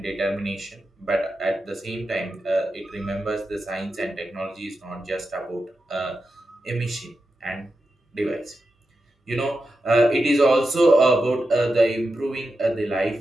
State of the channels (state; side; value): normal; both; correlation 0.89